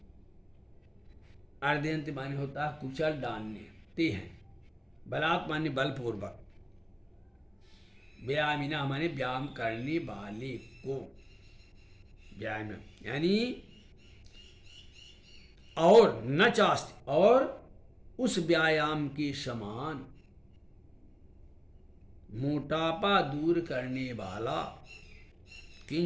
अर्दयंत माने होता है कुचल डालने, ते हैं, बलात् माने बलपूर्वक, व्यायामिना माने व्यायाम करने वाले को, व्यायाम यानी और न चास्त और उस व्यायाम के समान, मोटापा दूर करने वाला,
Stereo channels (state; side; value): identical; both; correlation 1.00